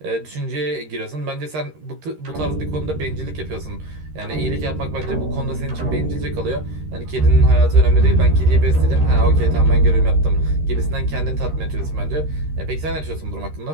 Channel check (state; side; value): late; left; 13 ms